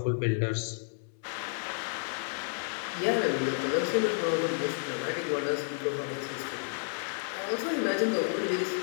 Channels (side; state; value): right; silent; 57 dB below the other